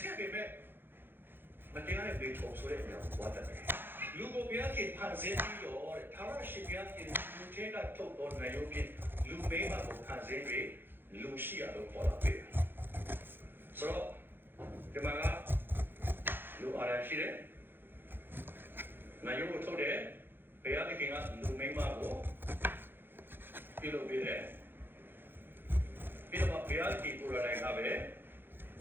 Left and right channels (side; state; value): left; late; 0.10 ms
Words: ည့်ပေမဲ့မတရားတဲ့ဘေးထုံဆိုတဲ့အရာကိုသွားတတ်တယ်။လူကိုဘုရားခင်ဖန်ဆင်းပြီးတော့တဲ့ထာဝရရှင်ဘုရားခင်လူထဲကထုတ်တော်နိုင်ရုံဖြင့်လူမိမကိုဖန်ဆင်းပြီးလူရှိရလို့ပေါ်လာပြီ။ဆိုတော့ဒီမှာကလူအားရရှိတယ်။နိုင်ရုံကိုထုတ်တယ်ဘုရားခင်ကလူမိမကိုပြုလုပ်ပေးတယ်။ပြီးတော့ဘုရားခင်ကိုယ်တိုင်ကပဲ